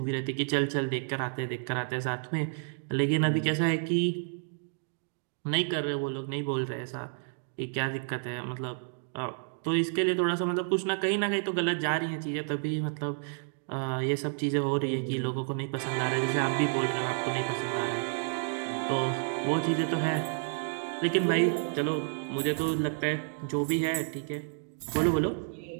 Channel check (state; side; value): silent; left; digital silence